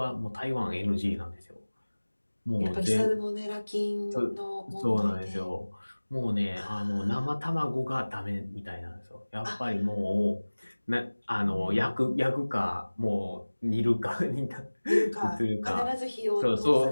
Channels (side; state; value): both; inverted; correlation -1.00